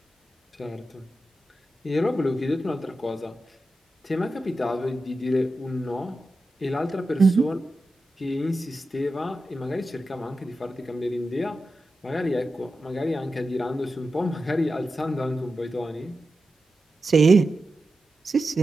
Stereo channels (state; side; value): normal; both; correlation 0.91